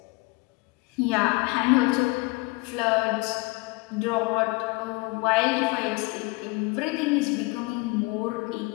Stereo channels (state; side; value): quieter; right; 25.3 dB